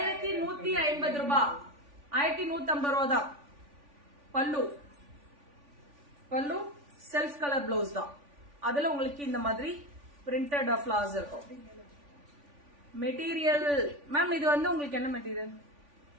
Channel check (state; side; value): late; left; 3.5 ms